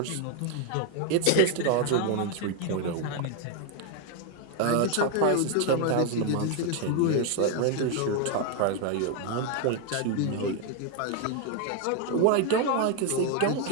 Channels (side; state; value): both; different; correlation 0.01